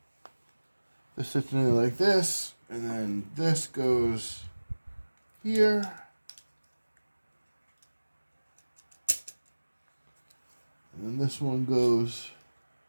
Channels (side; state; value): both; inverted; correlation -1.00